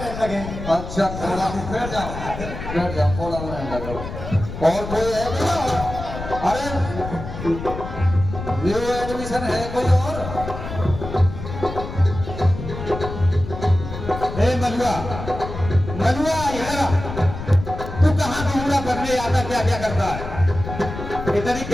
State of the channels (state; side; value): noise; left; rumble, 8 dB below the sound